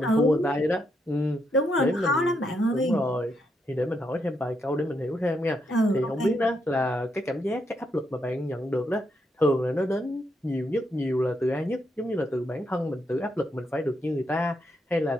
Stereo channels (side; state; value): both; normal; correlation 0.79